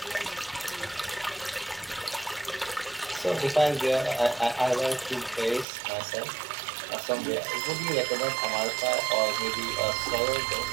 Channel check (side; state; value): left; drops out; at 5.7 s